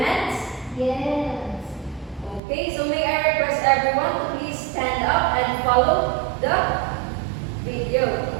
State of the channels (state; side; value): drops out; left; at 2.4 s